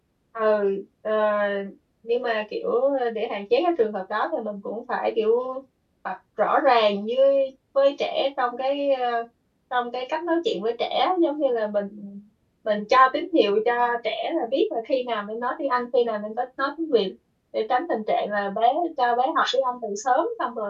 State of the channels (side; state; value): both; identical; correlation 1.00